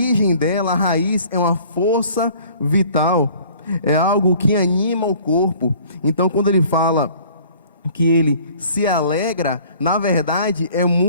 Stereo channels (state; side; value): inverted; both; correlation -0.52